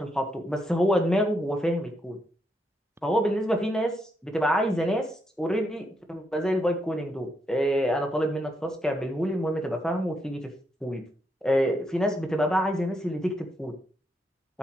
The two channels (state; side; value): normal; both; correlation 0.79